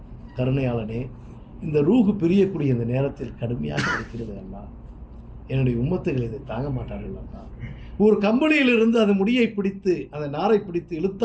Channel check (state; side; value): identical; both; correlation 1.00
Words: கருணையாளனே, இந்த ரூஹு பிரியக்கூடிய இந்த நேரத்தில் கடுமையாக இருக்கிறது அல்லாஹ், என்னுடைய உம்மத்துகள் இதை தாங்க மாட்டார்கள் அல்லாஹ். ஒரு கம்பளியிலிருந்து அந்த முடியை பிடித்து அந்த நாரை பிடித்து